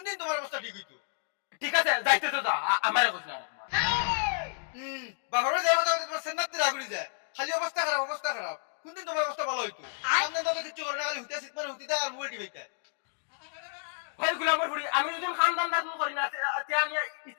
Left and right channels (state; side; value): silent; right; digital silence